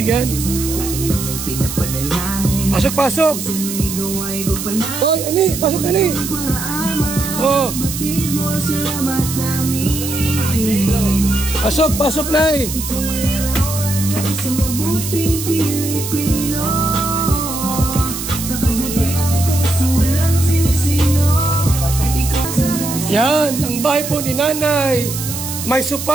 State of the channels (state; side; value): noise; right; hiss, 6 dB below the sound